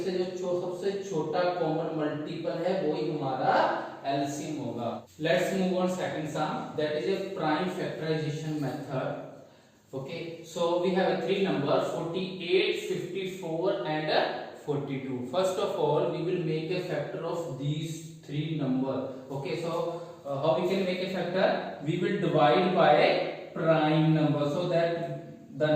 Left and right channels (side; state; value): both; identical; correlation 1.00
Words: से जो सबसे छोटा कॉमन मल्टीपल है वही हमारा एलसीएम होगा. Let's move on second sum, that is a prime factorization method. Okay, so we have a three number 48, 54 and 42. First of all we will make a factor of these three number. Okay, so how we can make a factor? We will divide by prime number, so that the